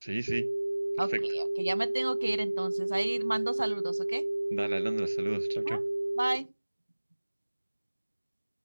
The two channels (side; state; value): both; inverted; correlation -1.00